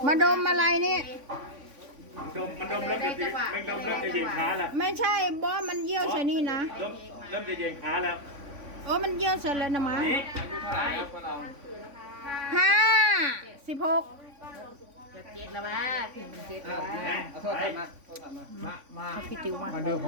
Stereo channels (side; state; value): left; late; 3.5 ms